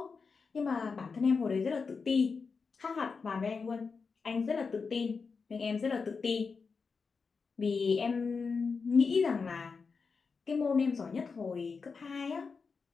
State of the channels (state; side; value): quieter; right; 5.0 dB